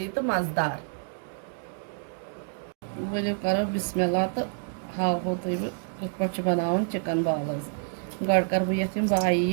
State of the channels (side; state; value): left; silent; 59 dB below the other